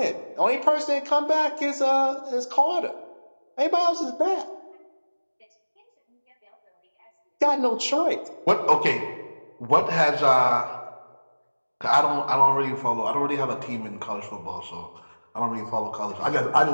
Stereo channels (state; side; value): inverted; both; correlation -1.00